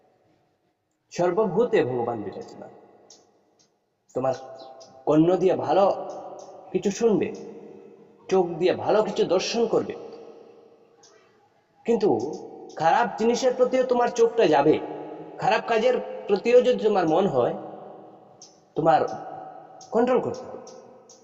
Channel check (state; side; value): identical; both; correlation 1.00